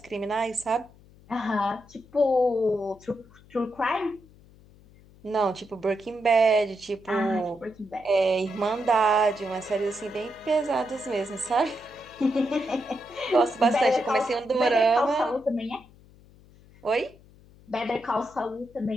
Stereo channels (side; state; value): left; noise; hum, 25 dB below the sound